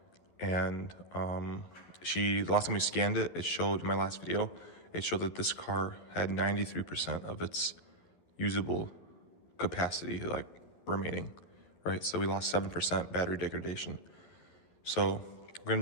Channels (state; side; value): late; right; 11 ms